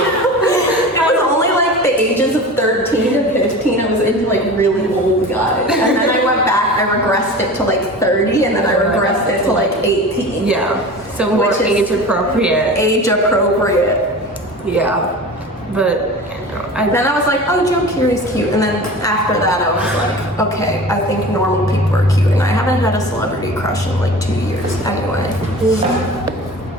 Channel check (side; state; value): both; normal; correlation 0.35